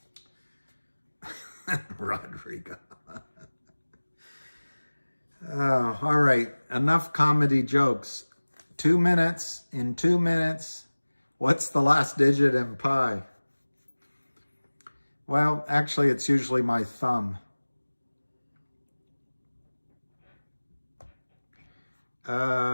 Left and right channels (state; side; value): inverted; both; correlation -1.00